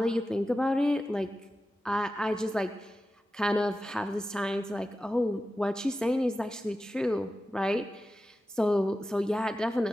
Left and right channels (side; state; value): both; normal; correlation 0.93